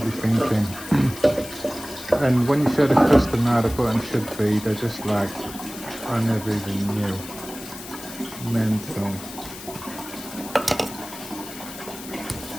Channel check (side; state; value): left; noise; hiss, 13 dB below the sound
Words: thinking? And when you show the customer how the button should be, they're just like, I never even knew. Mental.